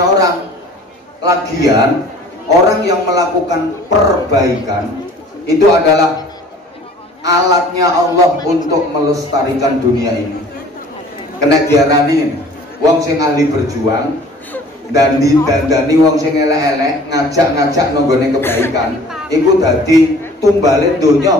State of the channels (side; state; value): both; normal; correlation 0.49